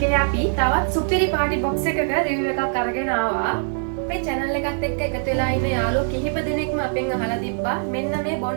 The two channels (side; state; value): left; silent; digital silence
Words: අපි තවත් සුපිරි පාටි බොක්ස් එකක රිවිව් එකක් අරගෙන ආවා. අපේ channel එකත් එක්ක එකතු වෙලා ඉන්න යාළුවෝ කිහිප දෙනෙක්ම අපෙන් අහලා තිබ්බා මෙන්න මේ